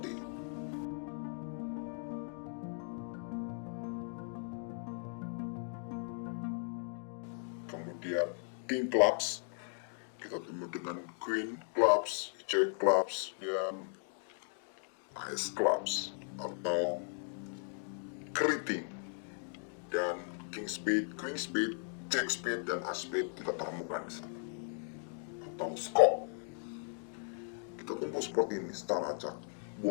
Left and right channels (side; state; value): right; silent; 53 dB below the other